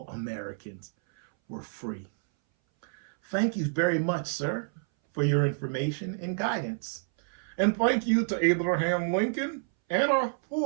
Americans were free. Thank you very much, sir, for your information and guidance. And thank you to Abraham Lincoln and our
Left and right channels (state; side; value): silent; left; 59 dB below the other